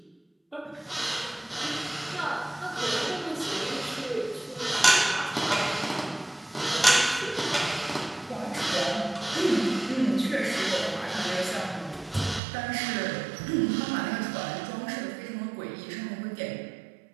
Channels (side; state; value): left; drops out; at 12.4 s